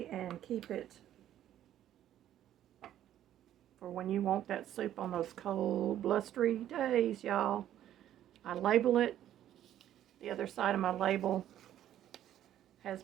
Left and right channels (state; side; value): quieter; left; 11.7 dB